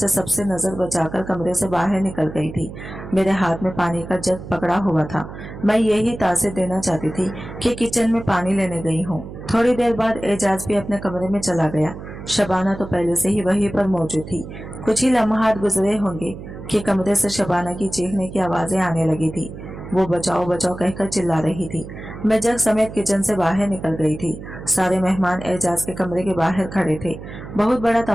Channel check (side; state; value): right; noise; hum, 12 dB below the sound